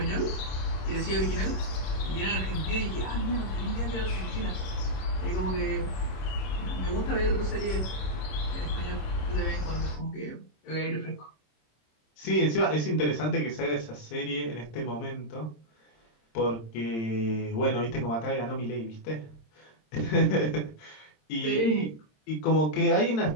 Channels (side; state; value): right; late; 26 ms